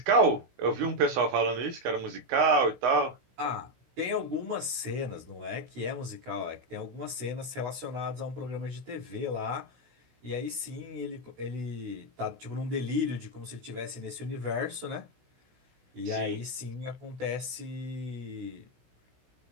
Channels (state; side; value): late; left; 16 ms